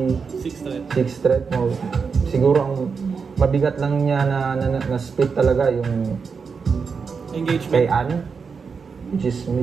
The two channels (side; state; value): left; quieter; 5.5 dB